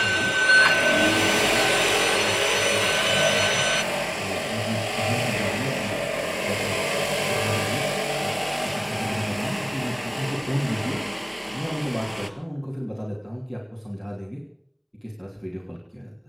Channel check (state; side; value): identical; both; correlation 1.00